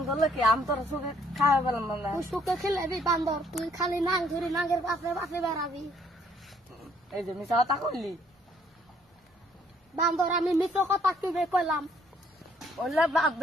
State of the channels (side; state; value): both; normal; correlation 0.65